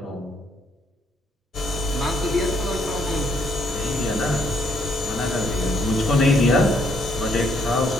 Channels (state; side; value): normal; both; correlation 0.70